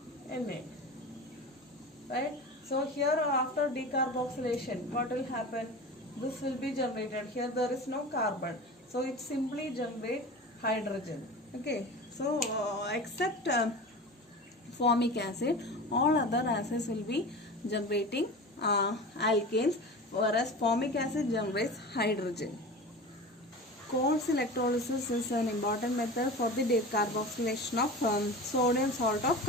Na, right? So here after decarboxylation, what will happen? This will be generated. Here there is no carbon, so it simply generates hydrogen. Okay, so except formic acid, all other acids will be generating alkanes, whereas formic acid generates hydrogen. Coles electrolysis is an important method for the decarboxylation of sodium salt of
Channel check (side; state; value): both; normal; correlation 0.32